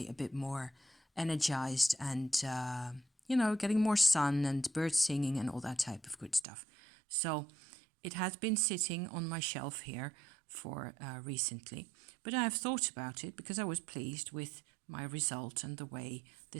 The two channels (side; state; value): left; drops out; at 6.5 s